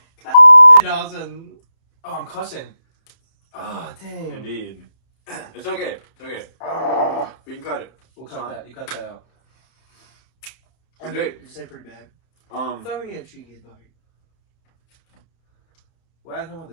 Dawson. Oh, I'm cussing. Oh, dang. Indeed. It's okay. It's okay. Oh. We can cut it. We'll cut that. You cut that out. So, Jake, You say pretty bad. I thought we had a cheeky bite. Well, I didn't talk about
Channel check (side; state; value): right; late; 31 ms